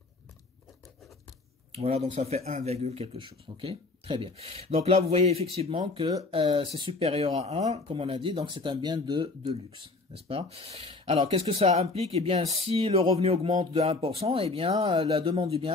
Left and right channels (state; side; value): quieter; right; 3.5 dB